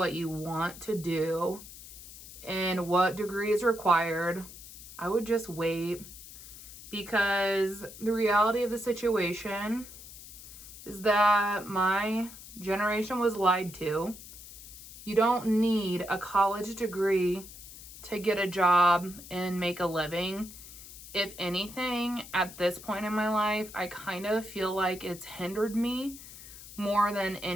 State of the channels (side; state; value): left; noise; hiss, 15 dB below the sound